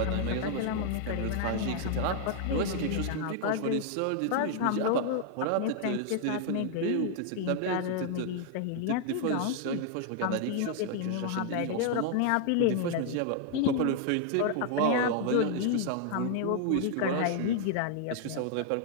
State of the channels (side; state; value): both; different; correlation 0.00